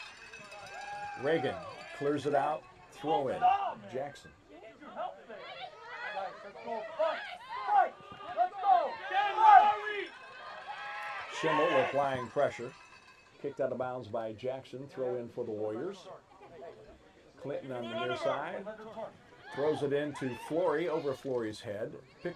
Reagan clears it out. Throw in. Jackson. Schimmel applying pressure. Kicked out of bounds by Jackson. Throw in for the Warriors. Clinton on the near side. Throws it into Flory, over Flory's head.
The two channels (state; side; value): identical; both; correlation 1.00